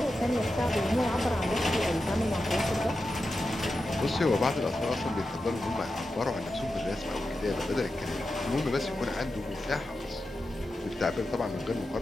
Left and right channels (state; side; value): normal; both; correlation 0.90